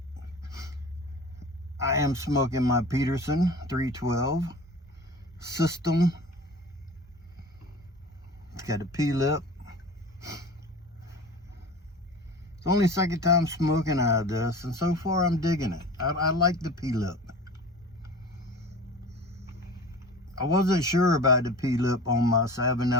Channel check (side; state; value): both; normal; correlation 0.38